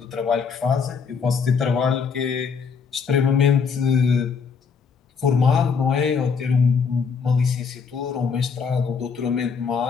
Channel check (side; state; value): right; quieter; 5.9 dB